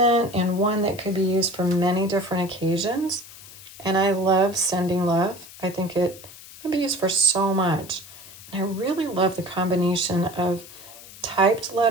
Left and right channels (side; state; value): left; noise; hiss, 18 dB below the sound